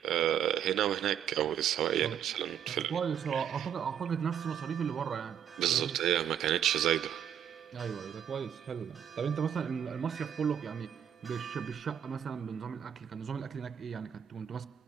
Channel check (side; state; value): left; quieter; 9.0 dB